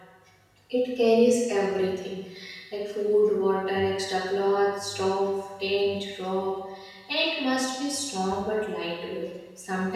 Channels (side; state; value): both; identical; correlation 1.00